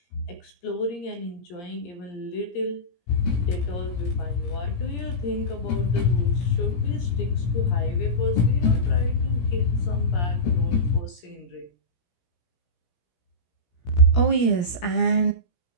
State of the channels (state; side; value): late; right; 17 ms